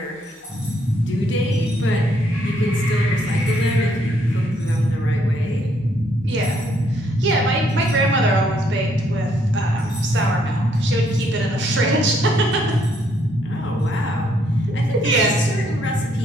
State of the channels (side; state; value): both; normal; correlation 0.70